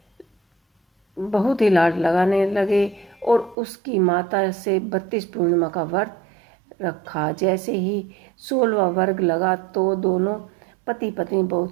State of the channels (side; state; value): left; drops out; at 3.6 s